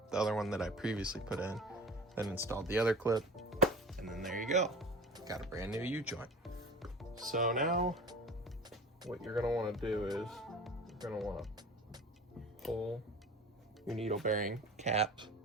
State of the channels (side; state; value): both; normal; correlation 0.37